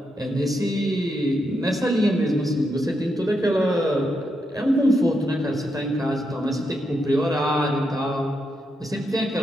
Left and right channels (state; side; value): normal; both; correlation 0.82